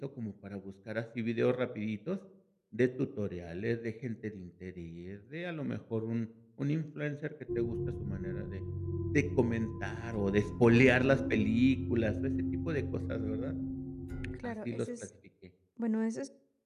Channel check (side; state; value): both; identical; correlation 1.00